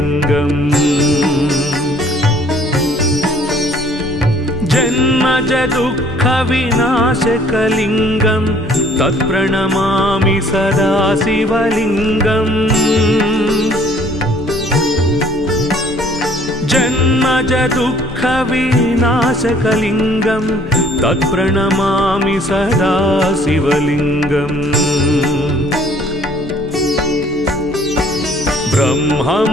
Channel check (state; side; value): normal; both; correlation 0.57